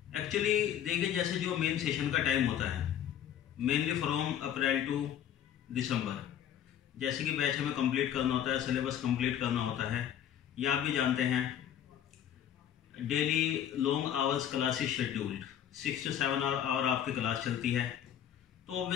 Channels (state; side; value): quieter; right; 10.1 dB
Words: एक्चुअली देखिए, जैसे जो मेन सेशन का टाइम होता है मेनली फ्रॉम अप्रैल टू दिसंबर, जैसे कि बैच हमें कंप्लीट करना होता है, सिलेबस कंप्लीट करना होता है. ये आप भी जानते हैं, daily long hours classes scheduled 6 to 7 hour आपकी क्लास चलती है. तो